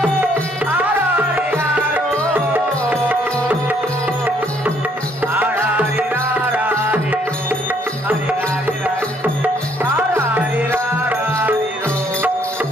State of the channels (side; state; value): both; normal; correlation 0.66